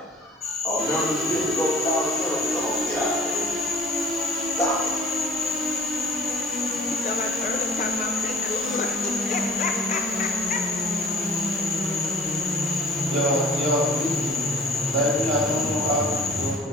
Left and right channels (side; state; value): both; normal; correlation 0.48